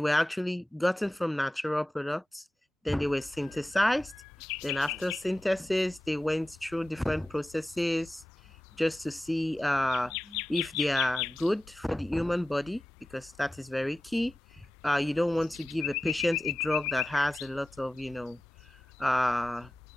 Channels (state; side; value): normal; both; correlation 0.94